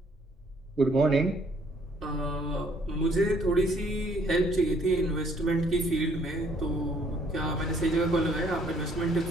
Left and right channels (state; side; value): normal; both; correlation 0.64